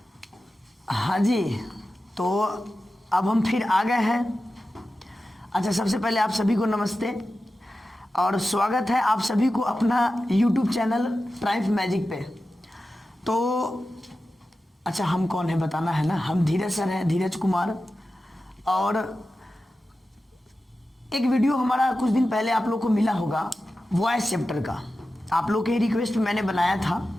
जी, तो अब हम फिर आ गए हैं। अच्छा, सबसे पहले आप सभी को नमस्ते और स्वागत है आप सभी को अपना YouTube चैनल ट्राइम्फ मैजिक पे। तो अच्छा, हम कौन है बताना है ना। हम धीरज सर हैं, धीरज कुमार। और एक वीडियो हमारा कुछ दिन पहले आप लोग को मिला होगा वॉइस चैप्टर का। आप लोग के रिक्वेस्ट पे मैंने बनाया था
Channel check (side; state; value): both; normal; correlation 0.93